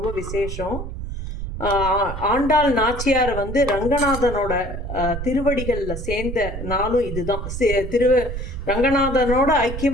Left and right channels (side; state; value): right; noise; rumble, 7 dB below the sound